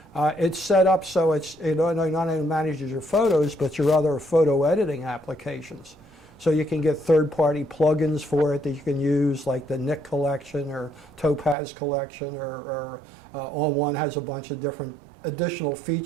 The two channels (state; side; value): drops out; left; at 11.6 s